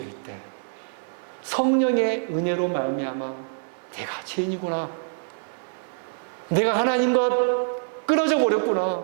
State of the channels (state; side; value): silent; left; digital silence